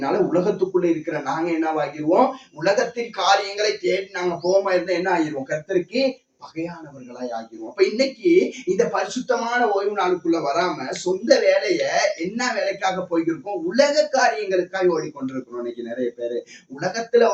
உலகத்துக்குள்ள இருக்கிற நாங்க என்னவாகிருவோம், உலகத்தின் காரியங்களை தேடி நாங்க போகாம இருந்தா என்ன ஆகிருவோம், கர்த்தருக்கு பகையானவர்களாய் ஆகிருவோம். அப்ப இன்னைக்கு இந்த பரிசுத்தமான ஓய்வு நாளுக்குள்ள வராம சொந்த வேலைய என்ன வேலைக்காக போய்கிருக்கோம், உலக காரியங்களுக்காக ஓடிக்கொண்டிருக்கிறோம். இன்னைக்கு நிறைய பேரு உலகத்துல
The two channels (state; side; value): identical; both; correlation 1.00